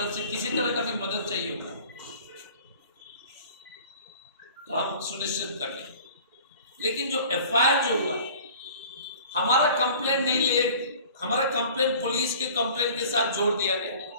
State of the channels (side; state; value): both; inverted; correlation -0.46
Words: से किसी तरह का भी मदद चाहिए होगा तो हम सुनिश्चित कर लेंगे। लेकिन जो एफआईआर जो हुआ, हमारा कंप्लेंट नहीं ले, हमारा कंप्लेंट पुलिस के कंप्लेंट के साथ जोड़ दिया गया।